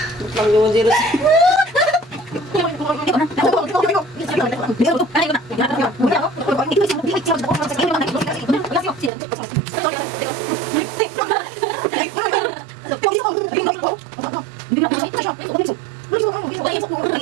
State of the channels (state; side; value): drops out; left; at 9.1 s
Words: Lang yung zero.